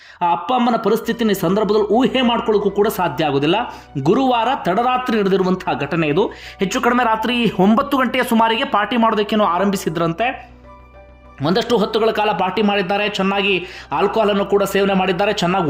ಆ ಅಪ್ಪ ಅಮ್ಮನ ಪರಿಸ್ಥಿತಿನ ಈ ಸಂದರ್ಭದಲ್ಲಿ ಊಹೆ ಮಾಡ್ಕೊಳ್ಳೋಕ್ಕೂ ಕೂಡ ಸಾಧ್ಯ ಆಗೋದಿಲ್ಲ. ಗುರುವಾರ ತಡರಾತ್ರಿ ನಡೆದಿರುವಂತಹ ಘಟನೆ ಇದು. ಹೆಚ್ಚು ಕಡಿಮೆ ರಾತ್ರಿ 9 ಗಂಟೆಯ ಸುಮಾರಿಗೆ ಪಾರ್ಟಿ ಮಾಡೋದಕ್ಕೇನೋ ಆರಂಭಿಸಿದ್ರಂತೆ. ಒಂದಷ್ಟು ಹೊತ್ತುಗಳ ಕಾಲ ಪಾರ್ಟಿ ಮಾಡಿದ್ದಾರೆ, ಚೆನ್ನಾಗಿ ಆಲ್ಕೋಹಾಲನ್ನು ಕೂಡ ಸೇವನೆ ಮಾಡಿದ್ದಾರೆ, ಚೆನ್ನಾಗಿ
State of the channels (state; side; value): identical; both; correlation 1.00